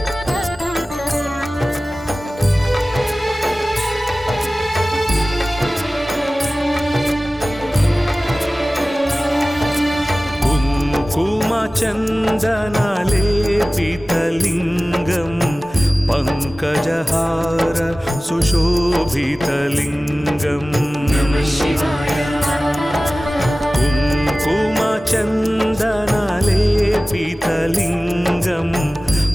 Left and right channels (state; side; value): normal; both; correlation 0.97